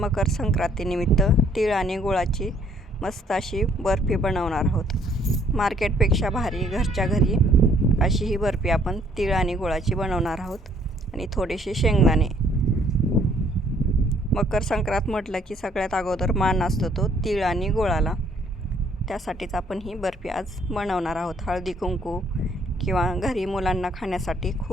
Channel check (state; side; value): normal; both; correlation 0.63